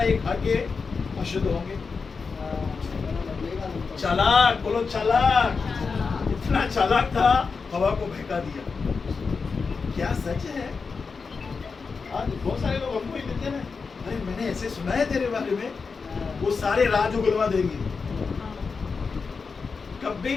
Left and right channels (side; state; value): right; quieter; 4.9 dB